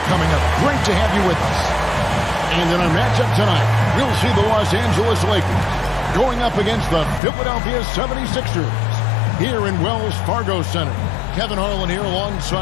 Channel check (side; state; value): right; drops out; at 7.2 s